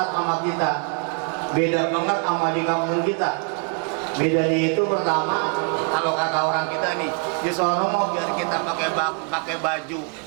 sama kita. Beda banget sama di kampung kita. Bedanya itu pertama, kalau kata orang kita nih, di sono mau biar kita pakai baju.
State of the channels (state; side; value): quieter; left; 38.3 dB